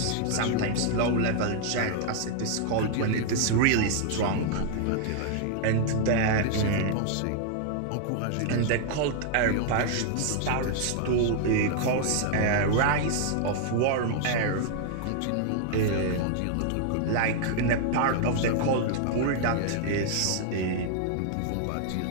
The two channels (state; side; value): different; both; correlation -0.01